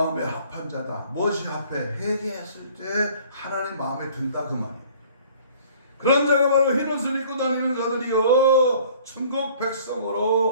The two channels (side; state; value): both; inverted; correlation -0.53